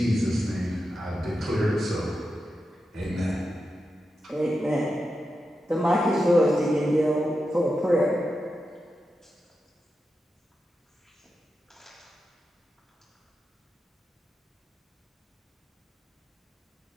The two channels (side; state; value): both; normal; correlation 0.89